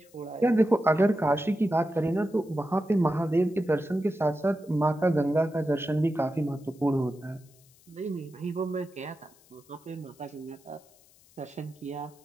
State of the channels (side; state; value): left; noise; hiss, 29 dB below the sound